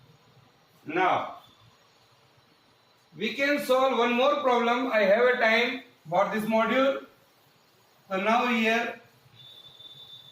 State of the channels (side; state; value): both; identical; correlation 1.00